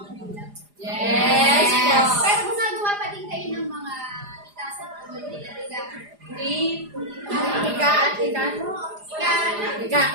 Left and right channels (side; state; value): left; late; 4.9 ms